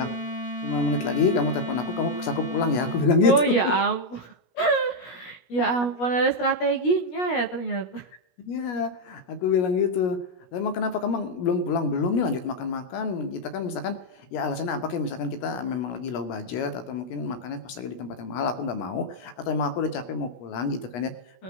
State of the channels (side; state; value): right; late; 17 ms